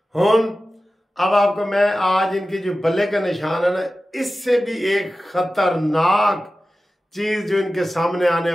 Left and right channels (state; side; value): normal; both; correlation 0.95